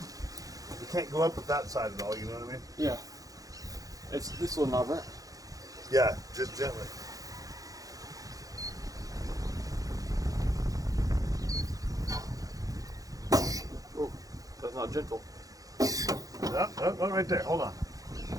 We can't go up with that side at all, you know what I mean? Yeah. It's this little knob, right? Yeah, just gently. Oh, that's not gentle. Oh, right there. Hold on.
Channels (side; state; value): left; late; 0.17 ms